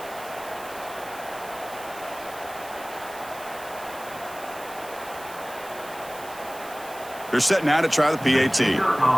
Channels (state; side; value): noise; right; hiss, 17 dB below the sound